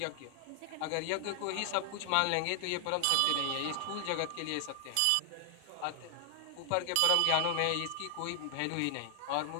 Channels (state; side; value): different; both; correlation 0.00